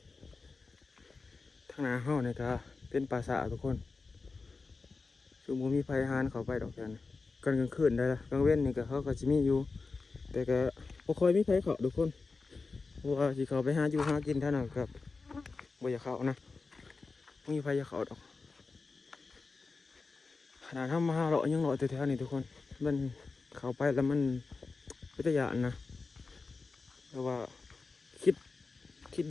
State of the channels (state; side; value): quieter; right; 4.1 dB